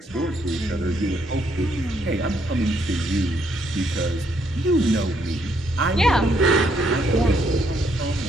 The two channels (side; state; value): both; normal; correlation 0.72